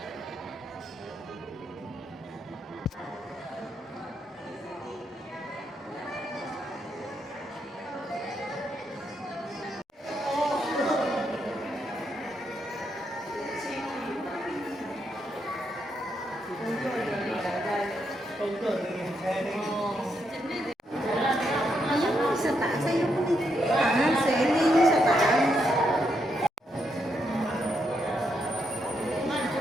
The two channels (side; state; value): both; normal; correlation 0.79